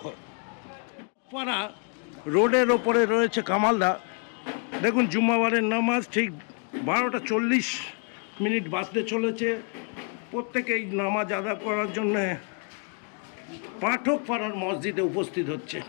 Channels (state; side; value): quieter; right; 39.2 dB